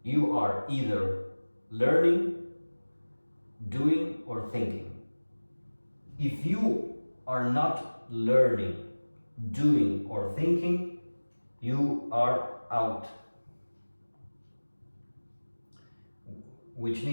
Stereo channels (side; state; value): both; inverted; correlation -1.00